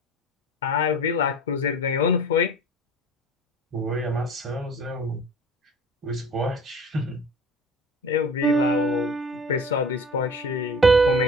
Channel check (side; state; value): both; normal; correlation 0.40